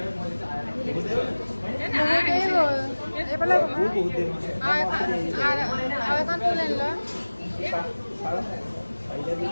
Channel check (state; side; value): inverted; both; correlation -1.00